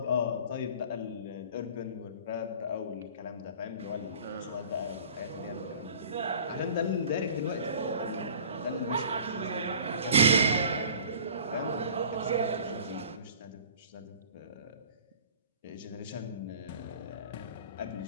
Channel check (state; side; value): inverted; both; correlation -0.46